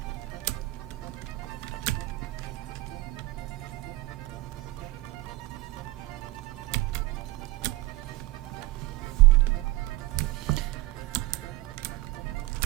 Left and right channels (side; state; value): left; quieter; 19.2 dB